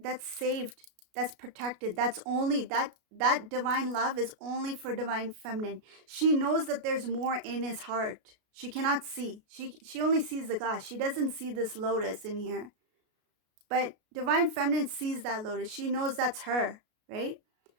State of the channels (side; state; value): left; late; 33 ms